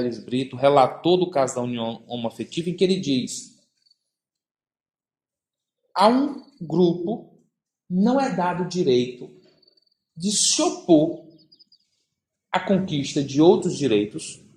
Brito, relator do caso da união homoafetiva, em que ele diz: a um grupo não é dado o direito de se opor à conquista de outros direitos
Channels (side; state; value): both; identical; correlation 1.00